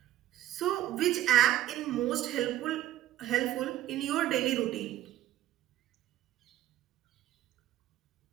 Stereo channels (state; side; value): quieter; left; 13.6 dB